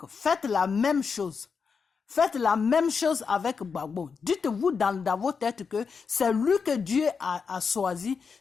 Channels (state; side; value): quieter; right; 5.6 dB